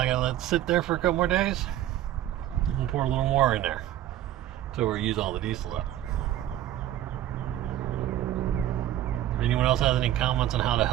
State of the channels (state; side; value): quieter; left; 12.8 dB